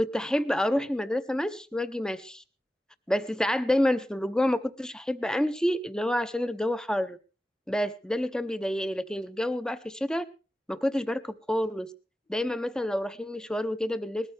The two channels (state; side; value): normal; both; correlation 0.93